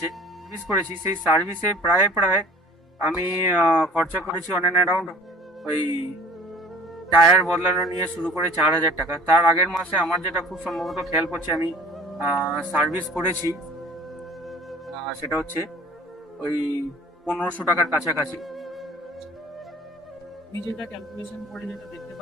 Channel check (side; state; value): both; normal; correlation 0.47